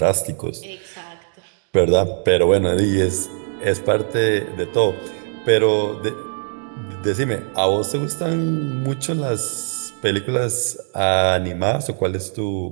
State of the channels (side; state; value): left; silent; 65 dB below the other